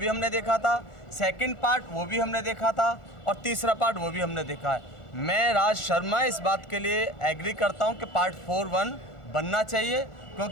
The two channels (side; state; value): right; late; 1.4 ms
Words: हमने देखा था, सेकंड पार्ट वो भी हमने देखा था और तीसरा पार्ट वो भी हमने देखा है। मैं राज शर्मा इस बात के लिए एग्री करता हूं कि पार्ट 4 1 बनना चाहिए,